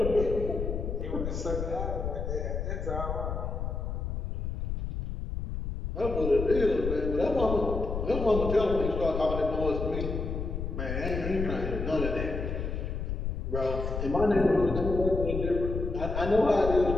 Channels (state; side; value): noise; left; rumble, 3 dB below the sound